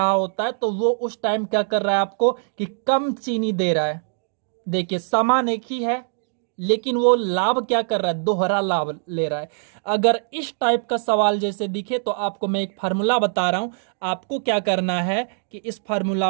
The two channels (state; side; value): silent; left; digital silence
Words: होता है तो वो उस टाइम क्या कर रहा है आपको कि कम चीनी दे रहा है। देखिए सामान एक ही है लेकिन वो लाभ क्या कर रहा है? दोहरा लाभ ले रहा है। अगर इस टाइप का सवाल जैसे दिखे तो आपको मैं एक फार्मूला बता रहा हूं, आपको क्या करना है कि इस फार्मूला